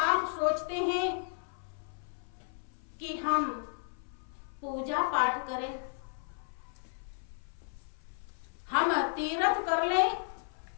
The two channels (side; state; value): right; silent; 55 dB below the other